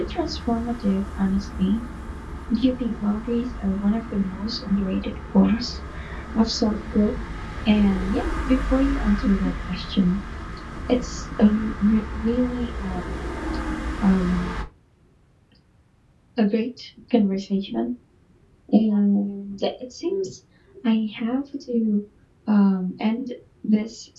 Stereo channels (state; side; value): identical; both; correlation 1.00